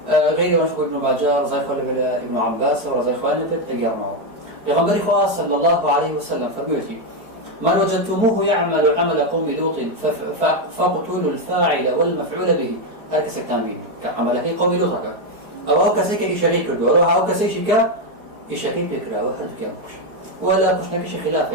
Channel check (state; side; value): late; left; 4.5 ms